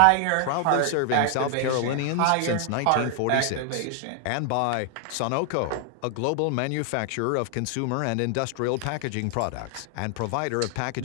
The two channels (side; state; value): both; different; correlation 0.00